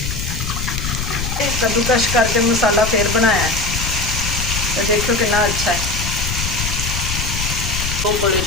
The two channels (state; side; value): noise; left; rumble, 4 dB below the sound